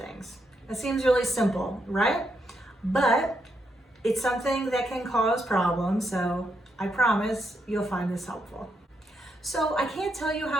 It seems really simple, right? But it's something that can cause problems, so I promise you'll find this helpful. So I can't tell you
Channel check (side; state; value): both; normal; correlation 0.80